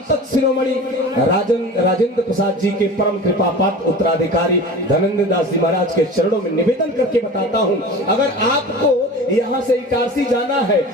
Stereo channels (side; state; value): both; normal; correlation 0.36